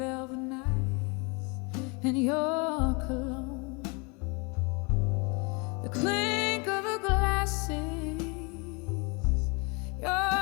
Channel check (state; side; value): quieter; right; 31.1 dB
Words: nights and your cologne, the clink of the glasses,